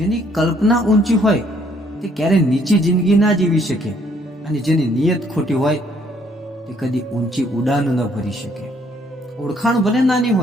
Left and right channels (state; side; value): normal; both; correlation 0.65